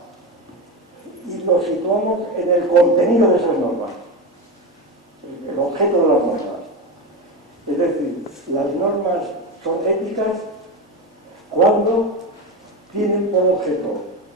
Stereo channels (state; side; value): normal; both; correlation 0.18